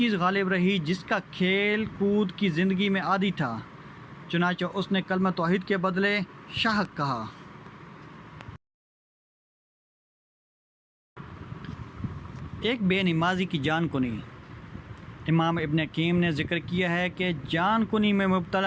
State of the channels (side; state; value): both; identical; correlation 1.00